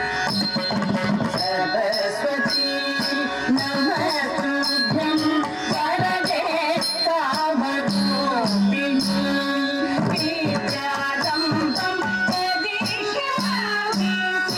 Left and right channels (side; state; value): both; identical; correlation 1.00